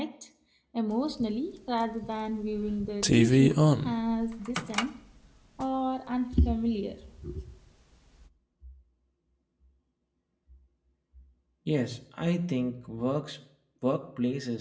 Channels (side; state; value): both; identical; correlation 1.00